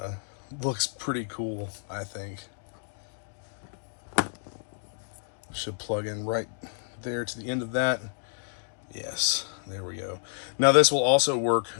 looks pretty cool, I think. Should plug in right there to the end of that. Yes, there we go. Now this will also work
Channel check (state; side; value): silent; right; digital silence